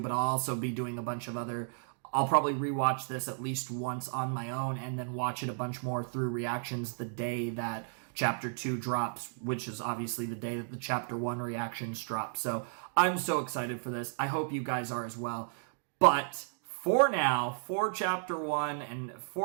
I'll also be doing a bunch of other... I'll probably rewatch this at least once on my own and then watch it a bunch more through reactions the day that Chapter 2 drops, which is obviously the day that the Chapter 1 reactions drop. So I'm so excited for this. I hope you guys are as well. But for now, for Chapter 1, and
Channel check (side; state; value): left; silent; digital silence